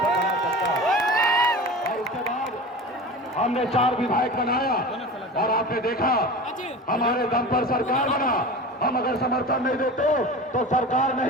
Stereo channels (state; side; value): normal; both; correlation 0.33